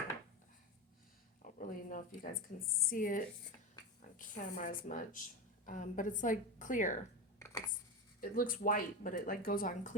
don't really know if you guys can see it on camera as much. But it's like clear. It looks white, but it like goes on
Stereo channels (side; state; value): both; normal; correlation 0.17